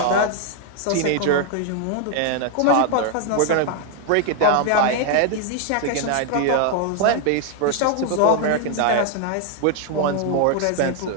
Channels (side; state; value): both; different; correlation 0.00